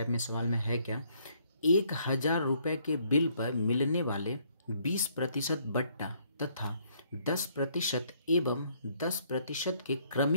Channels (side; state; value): both; inverted; correlation -0.67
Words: में सवाल में है क्या। 1,000 रुपये के बिल पर मिलने वाले 20% बट्टा तथा 10% एवं 10% के